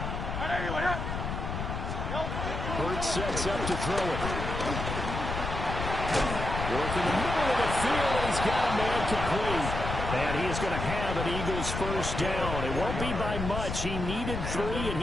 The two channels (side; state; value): left; noise; rumble, 4 dB below the sound